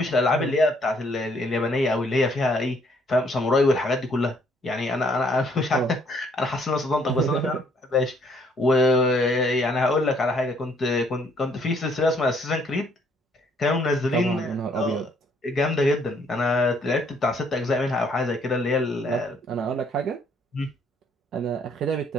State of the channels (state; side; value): normal; both; correlation 0.66